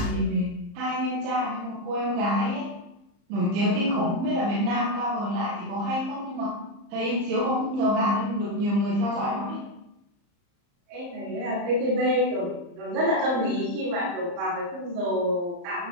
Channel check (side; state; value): left; late; 34 ms